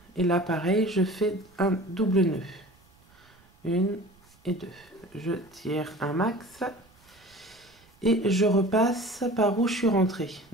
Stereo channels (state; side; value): noise; right; rumble, 30 dB below the sound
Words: et là pareil, je fais un double nœud. 1 et 2. Je tire un max et je repasse par où je suis rentrée.